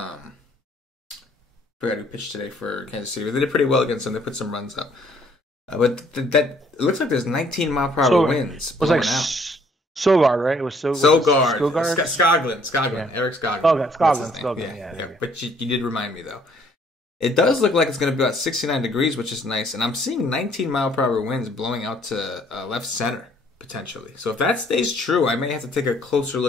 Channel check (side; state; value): both; normal; correlation 0.62